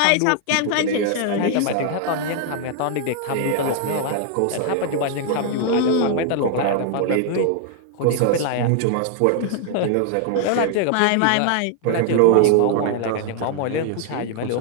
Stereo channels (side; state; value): both; different; correlation 0.00